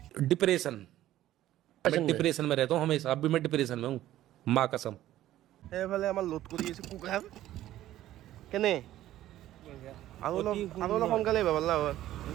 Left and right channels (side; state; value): left; quieter; 13.8 dB